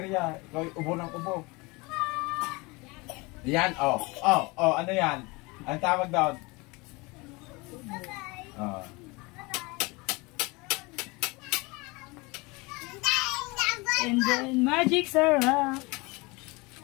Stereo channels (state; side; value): quieter; right; 25.5 dB